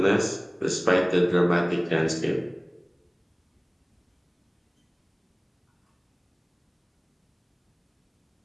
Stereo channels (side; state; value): both; identical; correlation 1.00